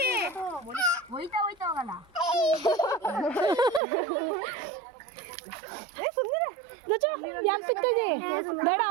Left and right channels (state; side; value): drops out; left; at 3.8 s